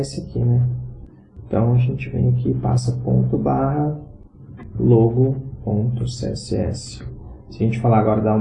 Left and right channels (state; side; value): identical; both; correlation 1.00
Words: aqui, né? Então a gente vem aqui e passa ponto barra logo.css. Se a gente falar agora, dar